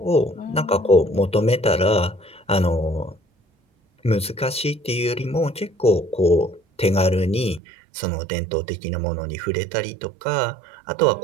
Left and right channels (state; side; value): drops out; left; at 7.6 s